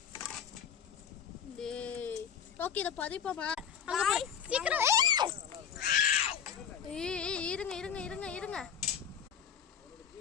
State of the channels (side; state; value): right; quieter; 8.2 dB